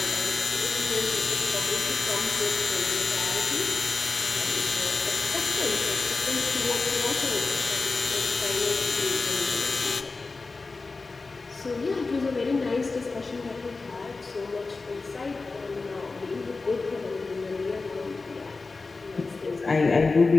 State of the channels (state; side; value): quieter; right; 3.9 dB